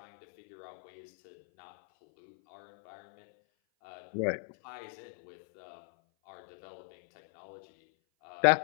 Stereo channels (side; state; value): right; silent; 53 dB below the other